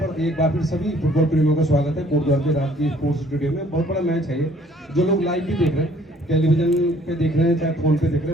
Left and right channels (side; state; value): both; normal; correlation 0.59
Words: एक बार फिर सभी फुटबॉल प्रेमियों का स्वागत है कोटद्वार के राजकीय स्पोर्ट्स स्टेडियम में। बहुत बड़ा मैच है ये, जो लोग लाइव भी देख रहे हैं, टेलीविजन पे देख रहे हैं, चाहे फोन पे देख रहे